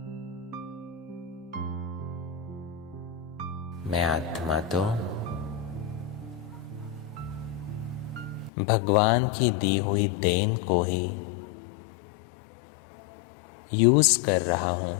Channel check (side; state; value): right; drops out; at 8.5 s